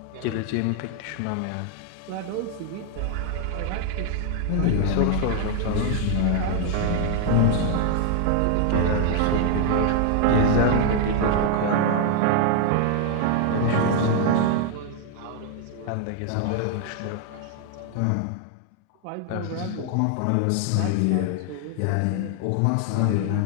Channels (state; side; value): different; both; correlation 0.00